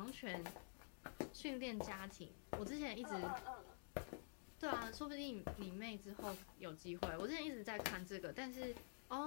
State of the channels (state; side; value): silent; right; digital silence